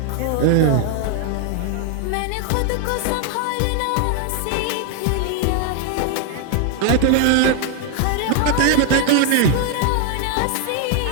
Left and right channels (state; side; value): different; both; correlation 0.00